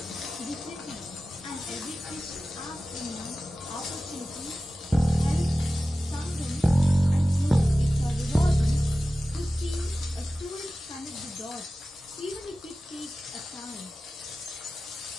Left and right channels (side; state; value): both; normal; correlation 0.95